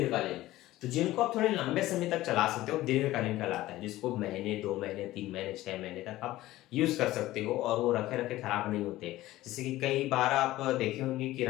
तो जिनको आप थोड़े लंबे समय तक चला सकते हो, दीर्घकालीन कहलाता है, जिसको महीने 2 महीने 3 महीने 6 महीने तक आप यूज कर सकते हो और वो रखे रखे खराब नहीं होते। जैसे कि कई बार आप देखे होंगे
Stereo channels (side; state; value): right; quieter; 16.3 dB